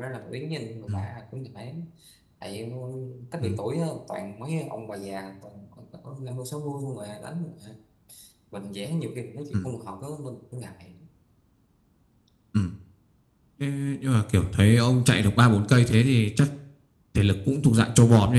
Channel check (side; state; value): both; identical; correlation 1.00